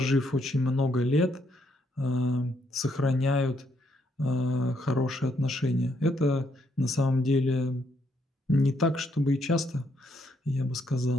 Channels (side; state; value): both; normal; correlation 0.74